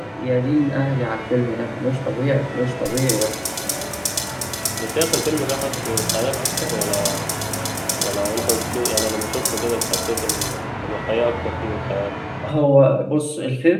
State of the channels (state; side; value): identical; both; correlation 1.00